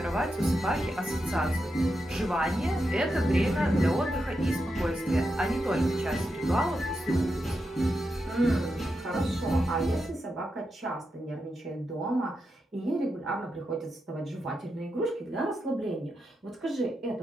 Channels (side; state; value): both; normal; correlation 0.86